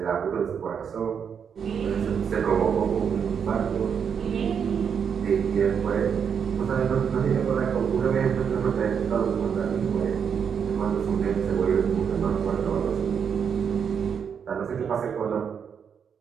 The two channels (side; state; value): left; quieter; 7.2 dB